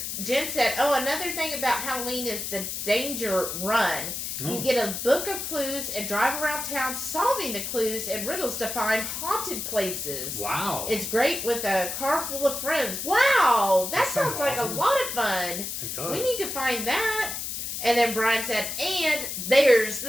Jen said, oh, another thing about Halloween is the danger run. Oh. You get a book of clues and drive around town solving the clues and riddles to find haunted places. Wow. It's great with a car full of friends. Wow. That sounds like awesome. A lot of fun. It does. We need to find that. And then Brian said, and there's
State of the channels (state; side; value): noise; left; hiss, 5 dB below the sound